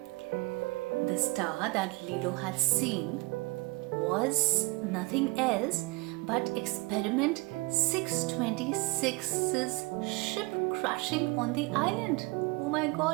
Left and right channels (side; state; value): left; quieter; 25.6 dB